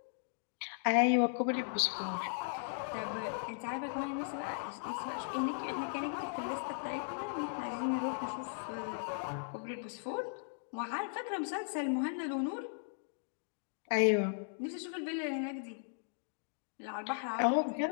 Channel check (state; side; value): silent; right; digital silence